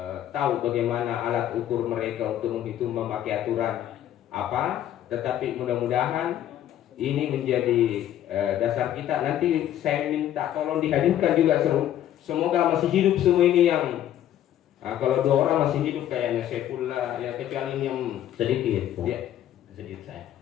tahu bagaimana alat ukur mereka untuk menghitung memakai aturan apa. Tetapi mudah-mudahan ini menjadi dasar kita. Nanti saya minta tolong dihadirkan juga semoga masih hidup semua ini yang kalau 2 orang masih hidup kayaknya Saifullah ya, kecuali ini yang sedikit ya. Sedikit saya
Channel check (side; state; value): right; quieter; 11.6 dB